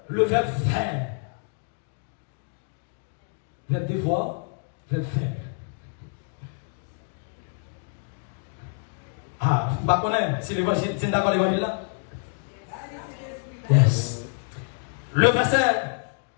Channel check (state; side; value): silent; right; 60 dB below the other